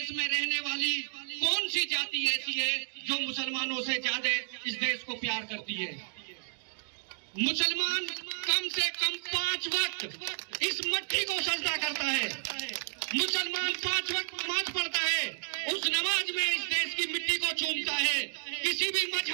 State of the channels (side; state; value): left; silent; digital silence